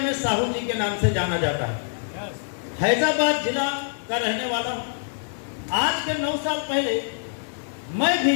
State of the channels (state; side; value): silent; right; digital silence